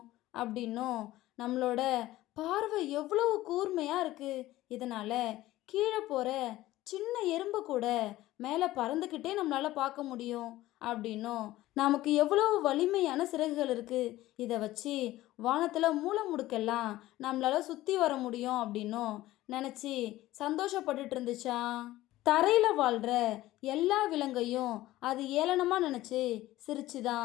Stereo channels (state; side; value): quieter; right; 16.2 dB